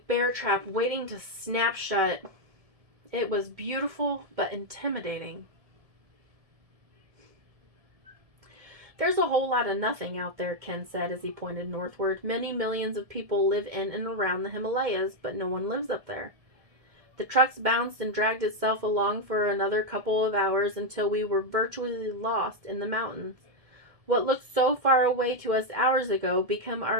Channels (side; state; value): left; late; 1.7 ms